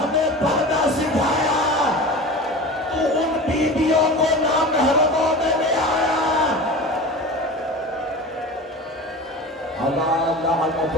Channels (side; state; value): both; normal; correlation 0.33